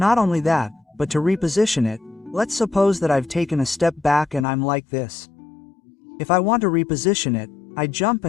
only that, but to reposition it, let's suppose that I've taken a step back and I'm like this. If I want to reposition it, I jump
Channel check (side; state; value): right; drops out; at 4.5 s